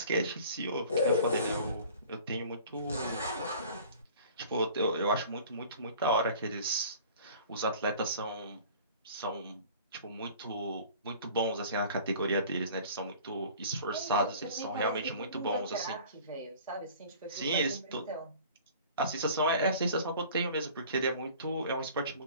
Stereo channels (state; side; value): inverted; both; correlation -0.46